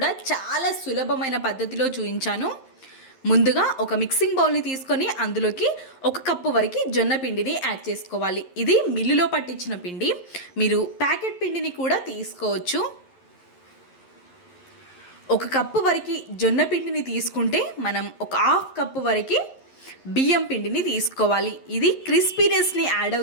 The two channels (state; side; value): late; right; 11 ms